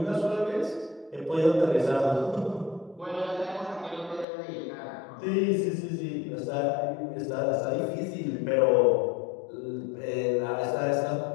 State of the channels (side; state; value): right; drops out; at 4.2 s